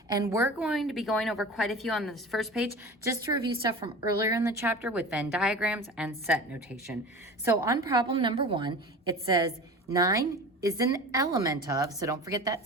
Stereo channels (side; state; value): both; normal; correlation 0.35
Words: and we're going to be going over quite a few on this first page just to review stuff from earlier in the chapter with Venn diagrams and set notation. So on problem number 1, it says 9 is an element of, so don't forget that